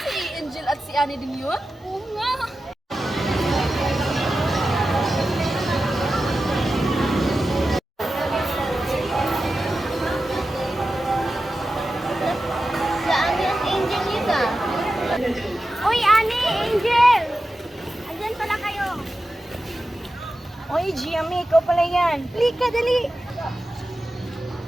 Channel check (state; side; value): normal; both; correlation 0.93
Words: Angel at si Annie din yun? Oo nga. Si Ani at Angel yun ah. Uy, Ani, Angel! Andyan pala kayo. Oy, Giami, ikaw pala yan. Lika, dali.